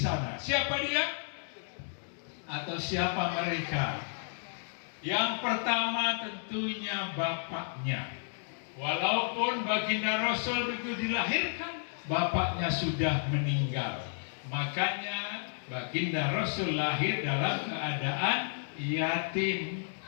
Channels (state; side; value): silent; right; digital silence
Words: Siapa dia? Atau siapa mereka? Yang pertama tentunya bapaknya. Walaupun baginda Rasul begitu dilahirkan, bapaknya sudah meninggal. Makanya baginda Rasul lahir dalam keadaan yatim.